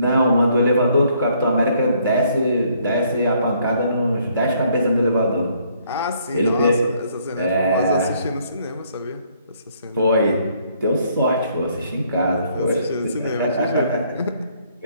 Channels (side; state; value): both; inverted; correlation -0.66